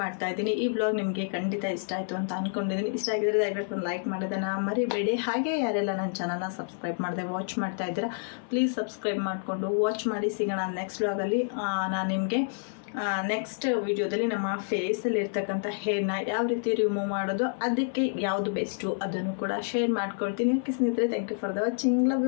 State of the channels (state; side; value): silent; right; 57 dB below the other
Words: ಮಾಡ್ತಾ ಇದ್ದೀನಿ. ಈ ವ್ಲಾಗ್ ನಿಮಗೆ ಖಂಡಿತ ಇಷ್ಟ ಆಯಿತು ಅಂತ ಅಂದ್ಕೊಂಡಿದ್ದೀನಿ. ಇಷ್ಟ ಆಗಿದ್ರೆ ದಯವಿಟ್ಟು ಒಂದು ಲೈಕ್ ಮಾಡೋದನ್ನು ಮರಿಬೇಡಿ. ಹಾಗೆ ಯಾರೆಲ್ಲ ನನ್ನ ಚಾನಲ್ನ ಸಬ್ಸ್ಕ್ರೈಬ್ ಮಾಡದೆ ವಾಚ್ ಮಾಡ್ತಾ ಇದ್ದೀರಾ ಪ್ಲೀಸ್ ಸಬ್ಸ್ಕ್ರೈಬ್ ಮಾಡಿಕೊಂಡು ವಾಚ್ ಮಾಡಿ. ಸಿಗೋಣ ನೆಕ್ಸ್ಟ್ ವ್ಲಾಗಲ್ಲಿ. ನಾನು ನಿಮಗೆ ನೆಕ್ಸ್ಟ್ ವಿಡಿಯೋದಲ್ಲಿ ನಮ್ಮ ಫೇಸಲ್ಲಿ ಇರ್ತಕ್ಕಂಥ ಹೇರ್ನ ಯಾವ ರೀತಿ ರಿಮೂವ್ ಮಾಡೋದು, ಅದಕ್ಕೆ ಯಾವುದು ಬೆಸ್ಟು ಅದನ್ನು ಕೂಡ ಶೇರ್ ಮಾಡ್ಕೊಳ್ತೀನಿ. ಓಕೆ ಸ್ನೇಹಿತರೆ, thank you for the watching. Love